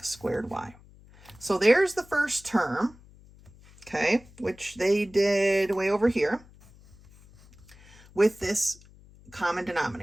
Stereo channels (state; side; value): noise; left; hum, 24 dB below the sound